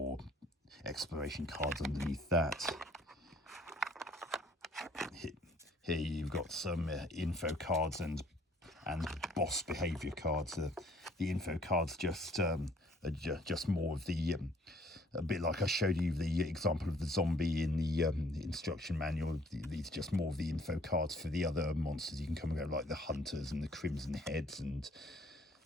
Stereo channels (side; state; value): both; normal; correlation 0.60